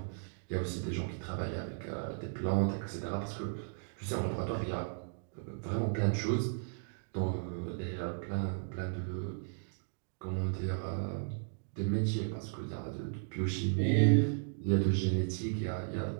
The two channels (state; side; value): silent; left; digital silence